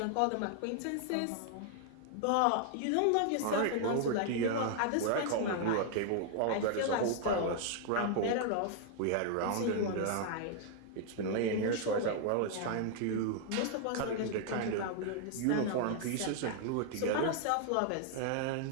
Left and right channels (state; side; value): different; both; correlation 0.00